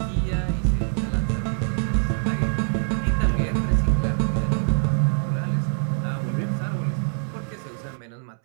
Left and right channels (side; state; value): left; silent; 62 dB below the other